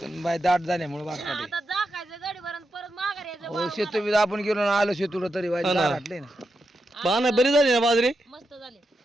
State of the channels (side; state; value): both; normal; correlation 0.86